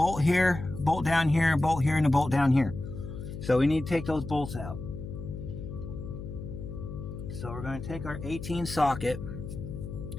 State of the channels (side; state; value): left; noise; hum, 9 dB below the sound